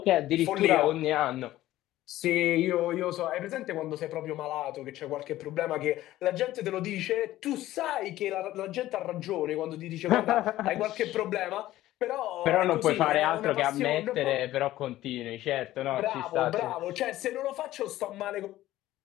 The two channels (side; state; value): right; quieter; 15.0 dB